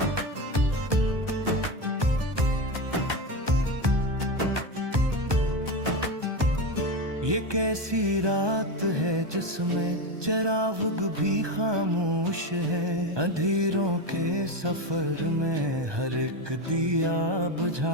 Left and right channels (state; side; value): late; left; 1.2 ms